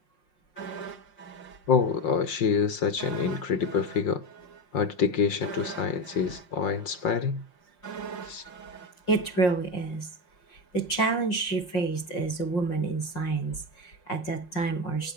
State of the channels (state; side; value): late; right; 5.6 ms